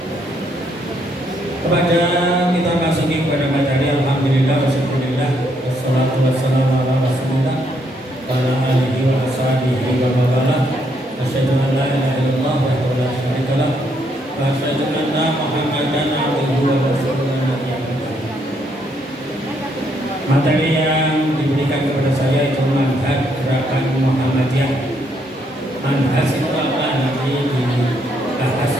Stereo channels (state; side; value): normal; both; correlation 0.73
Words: Kepada kita masuki kepada materi, alhamdulillah wasyukurillah wassalatu wassalamu ala rasulillah wa ala alihi wa ashabihi wa mawala. Asyhadu an la ilaha illallah wa la syarika lah wa asyhadu anna Muhammadan abduhu wa rasuluh. Materi yang diberikan kepada saya itu manhaj gerakan Muhammadiyah. Manhaj itu apa? Nanti dibahas